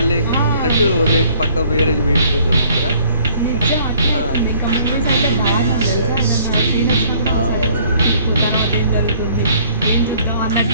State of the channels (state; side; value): inverted; both; correlation -0.59